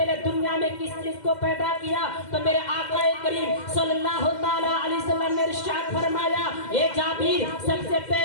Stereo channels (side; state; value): right; late; 2.1 ms